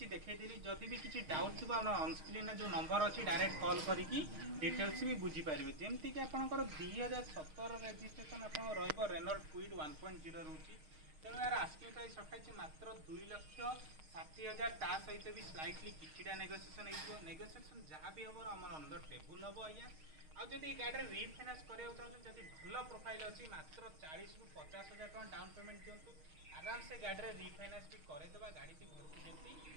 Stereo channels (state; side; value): late; left; 6.4 ms